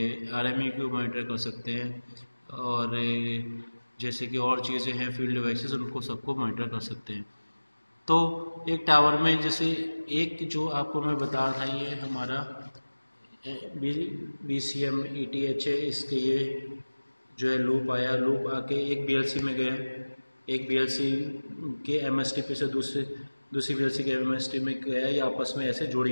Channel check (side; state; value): both; inverted; correlation -1.00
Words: आरएमई को मॉनिटर कर सकते हैं, और जैसे कि और चीज़ें हैं फील्ड डिवाइसेस उनको सबको मॉनिटर कर सकते हैं। तो एक टावर में जैसे एक जो आपको मैं बता रहा था, ये हमारा BCM ETH है, इसके ये जो है लूप आया, लूप आके एक BLC में गया, एक BLC के MSTP से दूसरी BLC के MSTP में गया, ये आपस में ऐसे जुड़ी